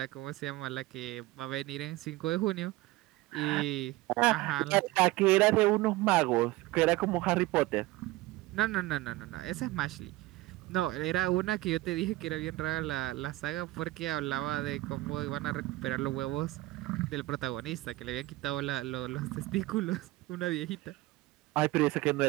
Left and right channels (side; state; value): left; quieter; 18.8 dB